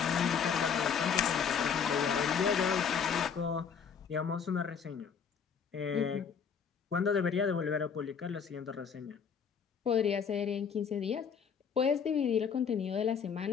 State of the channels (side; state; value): right; quieter; 6.8 dB